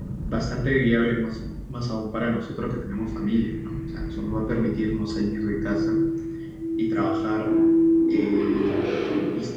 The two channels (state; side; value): identical; both; correlation 1.00